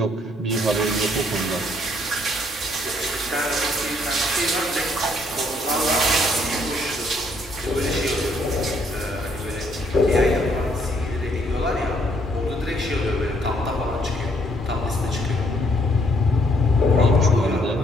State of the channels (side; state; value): both; normal; correlation 0.68